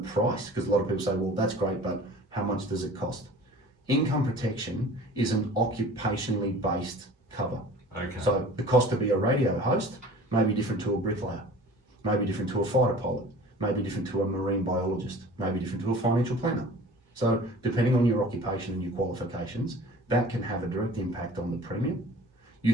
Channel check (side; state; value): both; normal; correlation 0.44